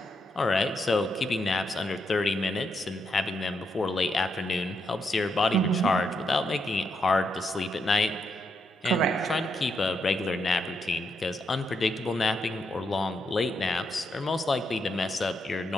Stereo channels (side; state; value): both; normal; correlation 0.80